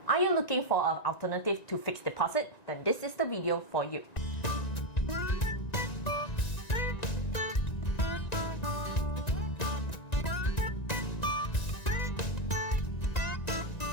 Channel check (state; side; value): late; right; 1.9 ms